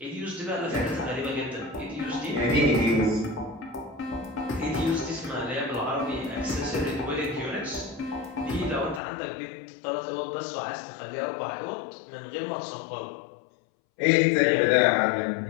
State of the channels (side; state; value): right; drops out; at 9.0 s